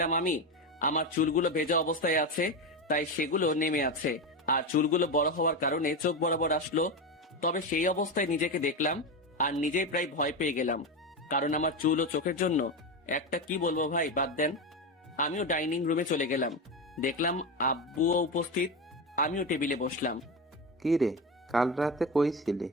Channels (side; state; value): both; normal; correlation 0.17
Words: আমি। আমার চুলগুলো ভেজা অবস্থায় আছে, তাই সেগুলো নেমে আছে, আর চুলগুলো বড় হওয়ার কারণে চোখ বরাবর আসলো। তবে সেই অবস্থায় নিজেকে দেখলাম আর নিজেই প্রায় ভয় পেয়ে গেলাম, কারণ আমার চুল ও চোখের জন্য একটা কি বলবো ভাই, বাদ দেন। আমিও ডাইনিং রুমে চলে গেলাম, দেখলাম আব্বুও উপস্থিত। আমিও টেবিলে বসলাম। কি রে, কাল রাতে কই ছিলি?